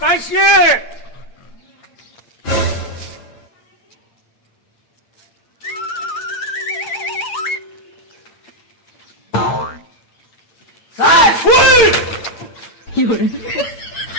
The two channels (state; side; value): late; right; 8.8 ms